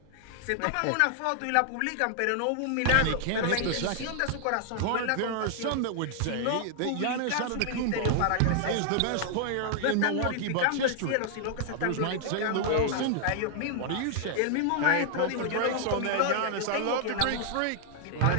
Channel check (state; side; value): different; both; correlation 0.00